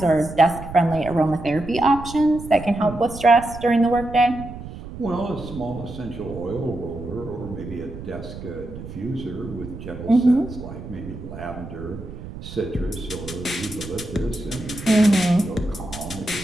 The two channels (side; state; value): right; noise; rumble, 12 dB below the sound